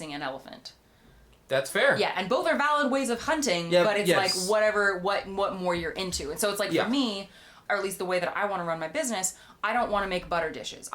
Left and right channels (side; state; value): both; identical; correlation 1.00